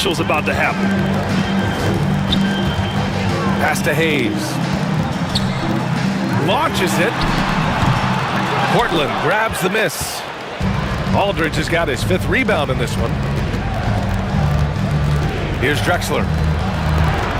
is about to happen. Pass to Hayes. Launches it. Portland grabs the miss. Aldridge has got his 5th rebound in this one. Here's Drexler.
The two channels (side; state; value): both; identical; correlation 1.00